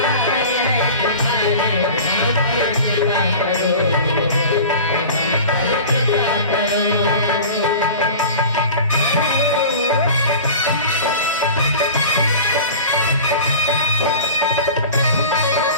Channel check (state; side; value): inverted; both; correlation -0.37